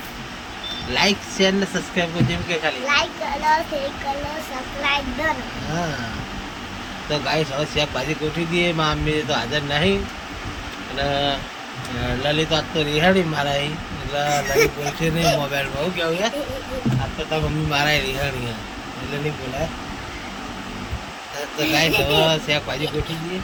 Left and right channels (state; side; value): identical; both; correlation 1.00